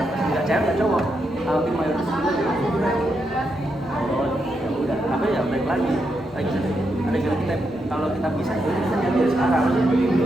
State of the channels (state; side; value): normal; both; correlation 0.82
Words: nggak cewek nggak cowok tapi mayoritas ya udah tapi ya balik lagi ada kita kalau kita bisa kita jadi sekarang